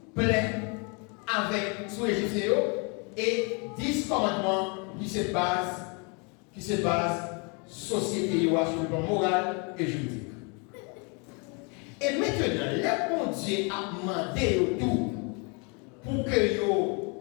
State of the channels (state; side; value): quieter; right; 33.9 dB